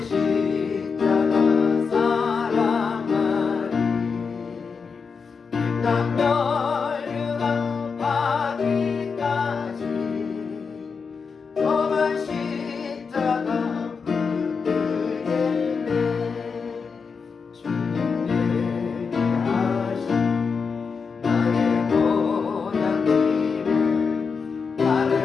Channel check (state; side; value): quieter; right; 5.4 dB